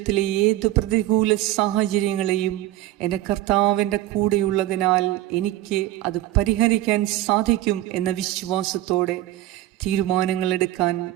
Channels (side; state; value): left; quieter; 14.9 dB